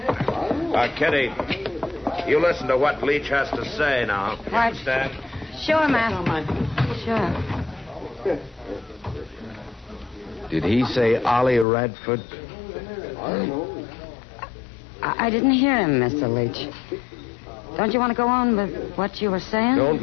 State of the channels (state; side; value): drops out; right; at 11.7 s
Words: Kitty, you listen to what Leach has to say now. You Right. understand? Sure, Matt. Sure. Did he say Ollie Radford? I didn't hear him, Mr. Leach. Don't you want to go on with what you were saying? Don't